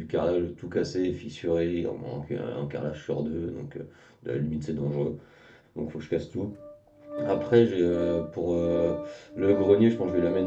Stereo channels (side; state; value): both; identical; correlation 1.00